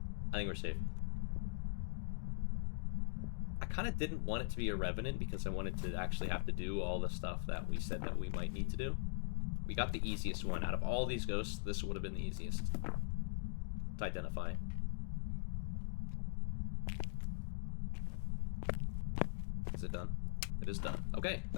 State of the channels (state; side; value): silent; right; digital silence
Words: I think we're safe. I kind of didn't want it to be a Revenant because I wanted to actually have to do all the stuff that we said that we might need to do. We got the easiest one. Out of all these ghosts, this would have been the easiest to identify. Is it done? It is done. Okay,